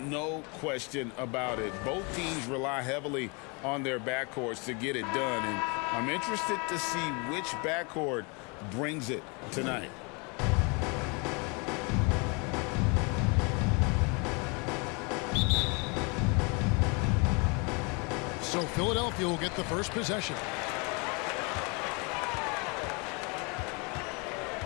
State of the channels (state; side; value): quieter; right; 31.4 dB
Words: question about it. Both teams rely heavily on their backcourts to get it done. And I'm interested to see which backcourt brings it tonight. So Philadelphia will get the first possession.